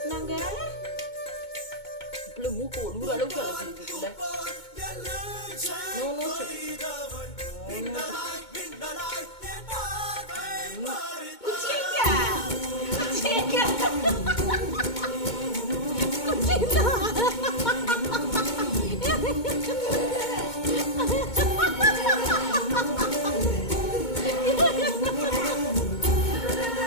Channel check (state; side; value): late; right; 2.2 ms